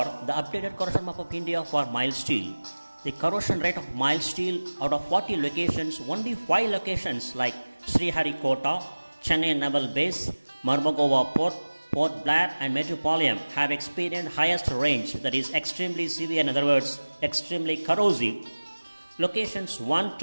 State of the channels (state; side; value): inverted; both; correlation -1.00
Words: the updated corrosion map of India for mild steel. The corrosion rate of mild steel out of 40 locations, only 5 locations like Sriharikota, Chennai Naval Base, Mormugao Port, Port Blair and Metropolitan have experienced highest range, that is extremely severe, in other words extremely corrosive. Locations 1